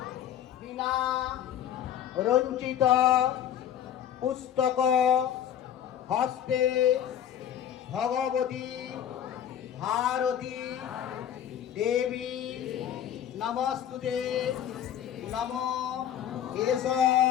বিনা রঞ্চিত পুস্তক হস্তে ভগবতী ভারতী দেবী নমস্তুতে নম এষ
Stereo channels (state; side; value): quieter; right; 10.1 dB